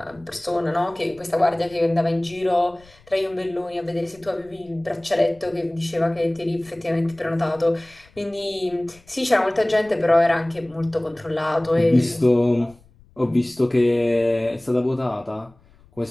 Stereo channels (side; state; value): left; noise; rumble, 28 dB below the sound